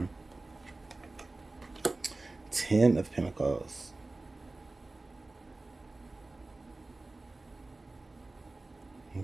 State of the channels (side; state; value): left; quieter; 3.1 dB